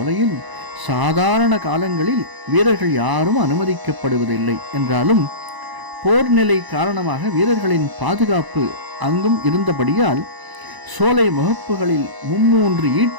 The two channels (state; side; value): late; left; 1.0 ms